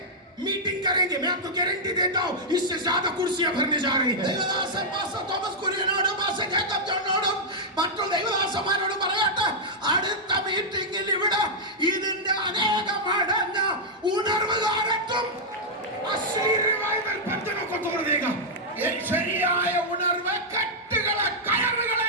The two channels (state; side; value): normal; both; correlation -0.05